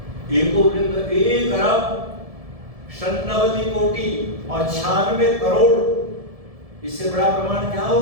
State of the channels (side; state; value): left; late; 1.7 ms